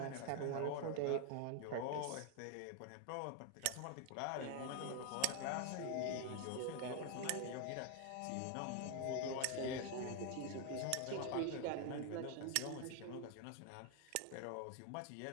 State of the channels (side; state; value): both; different; correlation 0.00